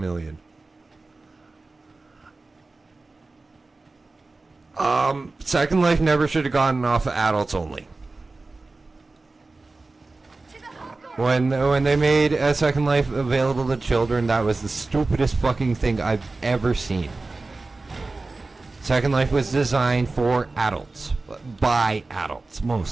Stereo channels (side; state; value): left; quieter; 3.5 dB